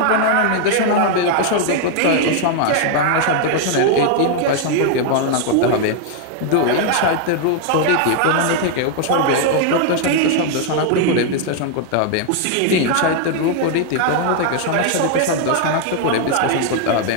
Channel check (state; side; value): different; both; correlation 0.00